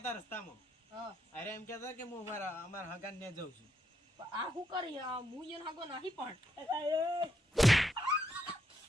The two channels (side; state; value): both; normal; correlation 0.78